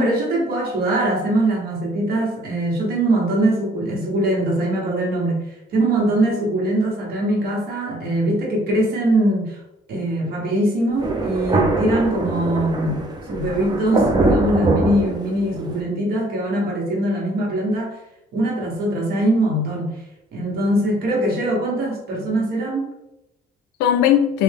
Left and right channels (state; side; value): normal; both; correlation 0.59